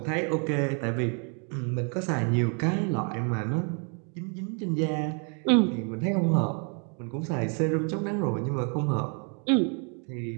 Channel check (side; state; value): left; quieter; 39.5 dB